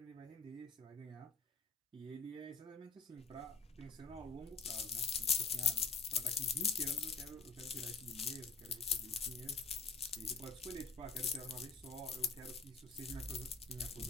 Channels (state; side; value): quieter; right; 4.9 dB